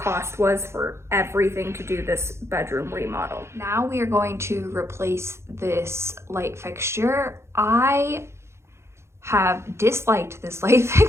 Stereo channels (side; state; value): left; late; 0.13 ms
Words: was for everything to do this bedroom remodel. Now we are going to replace this light fixture. I have disliked this light